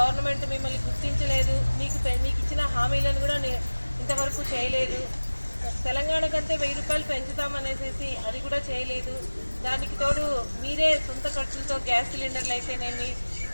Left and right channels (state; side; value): inverted; both; correlation -1.00